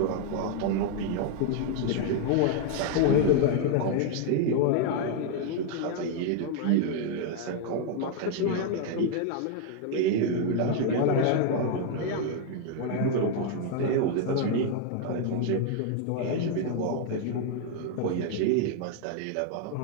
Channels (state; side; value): different; both; correlation 0.00